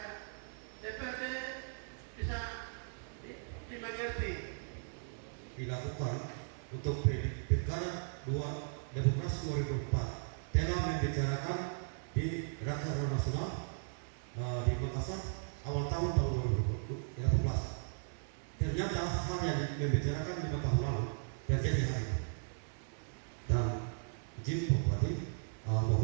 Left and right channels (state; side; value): silent; left; 53 dB below the other